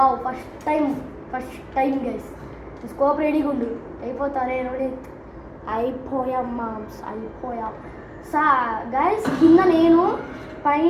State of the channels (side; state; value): both; identical; correlation 1.00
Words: first time guys. Scope రెడీగా ఉండు, అయిపోతారే రోడి. అయిపోయాం మామ్స్, అయిపోయాం. గైస్ కింద నేను,